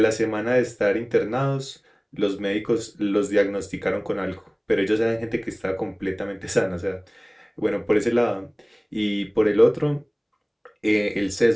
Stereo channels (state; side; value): identical; both; correlation 1.00